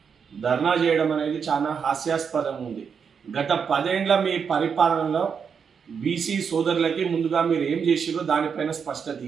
ధర్నా చేయడం అనేది చాలా హాస్యాస్పదం ఉంది. గత 10 ఏళ్ల మీ పరిపాలనలో బీసీ సోదరులకి ముందుగా మీరు ఏం చేసిరో దానిపైన స్పష్టత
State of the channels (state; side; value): quieter; left; 6.5 dB